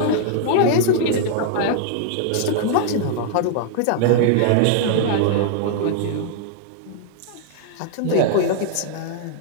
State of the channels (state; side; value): different; both; correlation -0.01